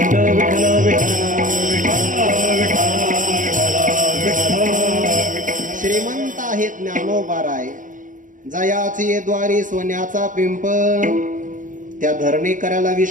श्रीमंत आहेत ज्ञानोबाराय, जयाची द्वारी सोन्याचा पिंपळ. त्या धरणी करायला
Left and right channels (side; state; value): left; late; 0.38 ms